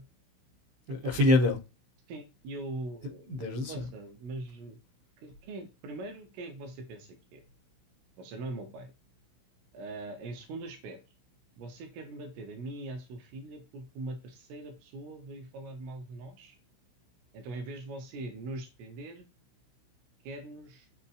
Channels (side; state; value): left; late; 16 ms